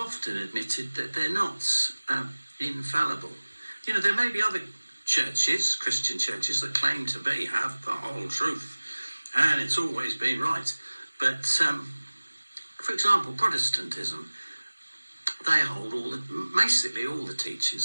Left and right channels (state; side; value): inverted; both; correlation -1.00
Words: admitted that they're not infallible. You know, there may be other churches, Christian churches, that claim to have the whole truth, and it's always been right. But, for example, Protestantism, they hold basically all the